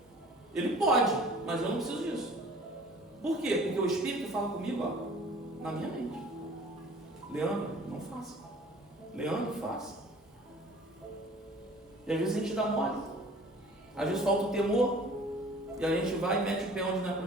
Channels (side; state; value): both; normal; correlation 0.48